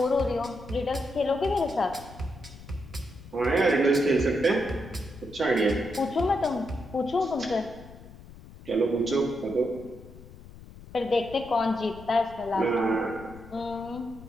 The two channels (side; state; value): left; noise; rumble, 18 dB below the sound